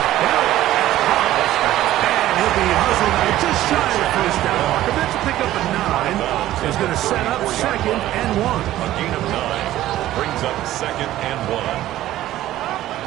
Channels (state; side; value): quieter; left; 14.2 dB